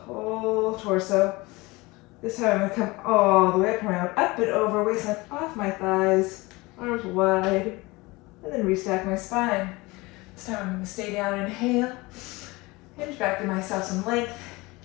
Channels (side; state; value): right; quieter; 22.9 dB